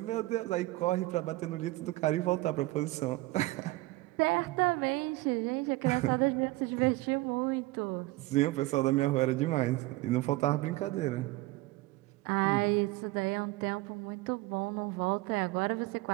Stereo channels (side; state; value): left; quieter; 20.0 dB